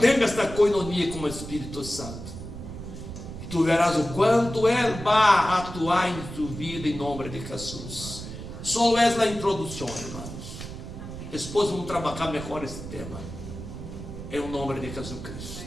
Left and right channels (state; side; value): noise; right; rumble, 10 dB below the sound